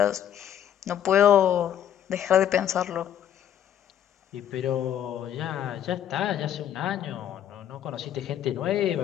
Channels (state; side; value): quieter; right; 10.2 dB